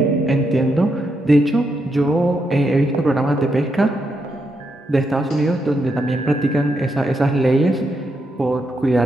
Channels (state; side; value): normal; both; correlation 0.81